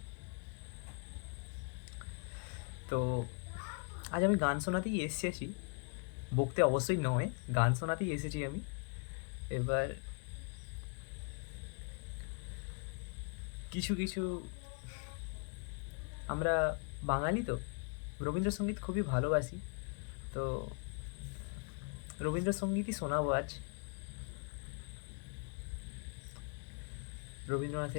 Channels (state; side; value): quieter; right; 39.9 dB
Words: তো আজ আমি গান শোনাতেই এসেছি, বকতে অবশ্যই নয়, গান শোনাতেই এসেছি আমি। এবার কিছু কিছু আমরা বাঙালি তো রবীন্দ্রসঙ্গীত খুবই ভালোবাসি। তো রবীন্দ্রসঙ্গীতই শোনাবো আজ।